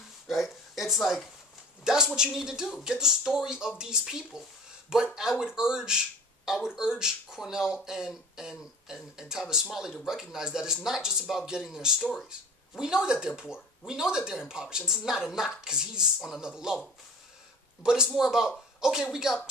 right? It's like, that's what you need to do. Get the story of these people. But I would urge Cornel and Tavis Smiley to recognize that it's not just about getting their stories. We know that they're poor. We know that they're impoverished. And this is not a knock, because he's on another level. But it's more about, okay, we got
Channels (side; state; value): both; normal; correlation 0.42